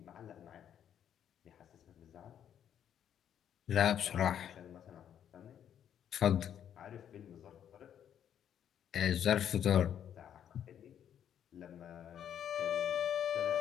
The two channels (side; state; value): right; quieter; 9.5 dB